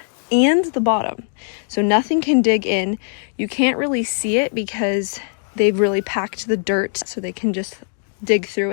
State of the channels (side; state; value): right; silent; digital silence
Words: and the bottom, so nothing can dig in. You can't really see it because they've really packed the dirt so they can just dig through